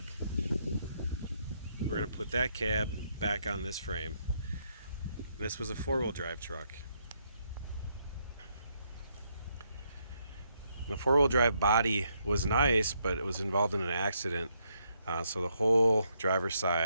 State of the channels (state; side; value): inverted; both; correlation -0.76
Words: We're gonna put that cab back on this frame. This was a four-wheel drive truck. The four-wheel drive body was nice, but it was involved in an accident. So the whole driver's